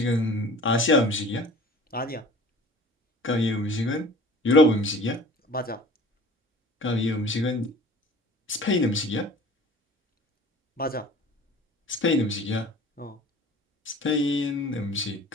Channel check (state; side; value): normal; both; correlation 0.44